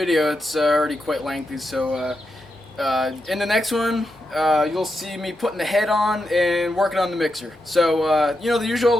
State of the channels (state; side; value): normal; both; correlation 0.86